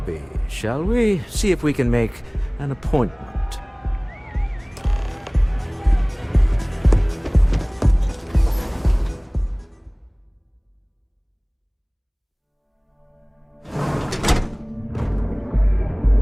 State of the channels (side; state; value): both; identical; correlation 1.00